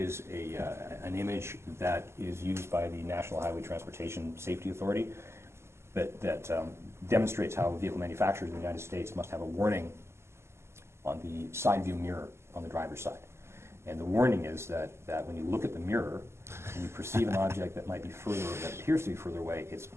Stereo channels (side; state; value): left; late; 0.13 ms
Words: an image that is used by the National Highway Transportation Safety Authority that demonstrates how vehicle manufacturers in the United States must have a warning on the side view mirror on the driver's side. And the warning is that when you look at the mirror and you perceive an object that might be further, that appears to be further away, it's